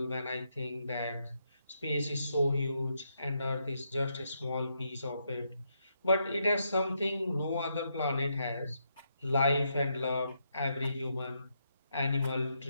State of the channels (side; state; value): both; inverted; correlation -0.80